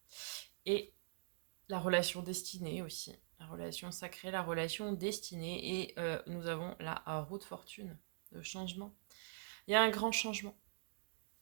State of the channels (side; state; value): left; silent; digital silence